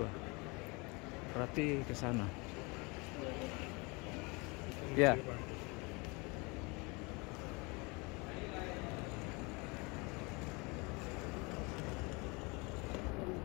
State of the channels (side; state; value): right; quieter; 27.8 dB